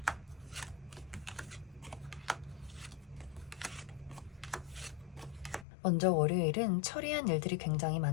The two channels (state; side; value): drops out; right; at 5.7 s